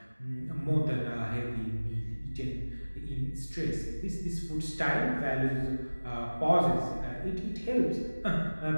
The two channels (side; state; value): both; inverted; correlation -1.00